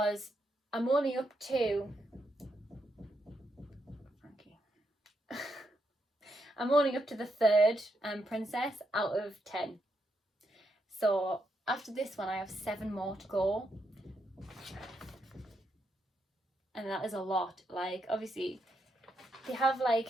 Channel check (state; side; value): normal; both; correlation 0.80